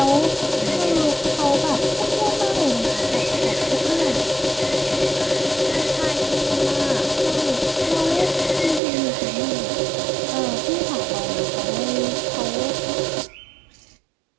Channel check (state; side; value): drops out; left; at 8.8 s